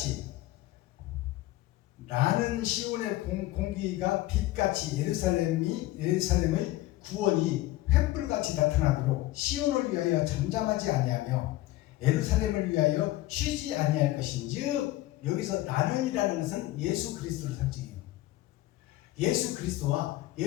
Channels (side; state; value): right; quieter; 16.8 dB